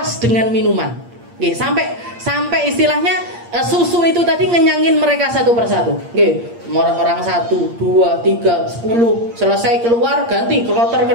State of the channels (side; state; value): left; late; 8.6 ms